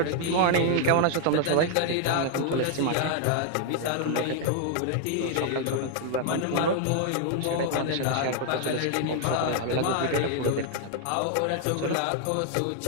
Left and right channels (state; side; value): different; both; correlation 0.00